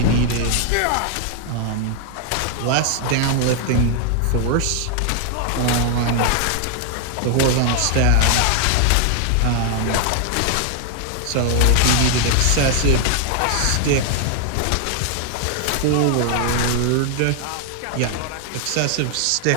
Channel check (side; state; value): both; different; correlation 0.00